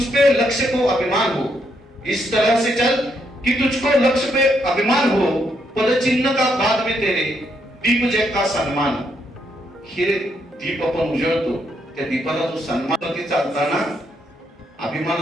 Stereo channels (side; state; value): both; normal; correlation 0.76